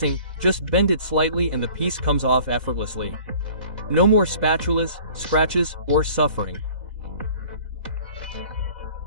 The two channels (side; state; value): left; late; 2.0 ms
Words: just bend it slightly and the piece comes off effortlessly. No more spatulas, scratches, or suffering.